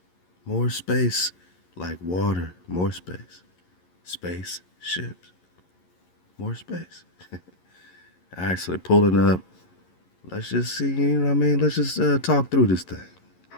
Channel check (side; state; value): right; late; 11 ms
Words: More space, like water, more space. Space ships, more space. All right, so they're pulling up. Let's just see, you know what I mean? Let's just talk through this thing.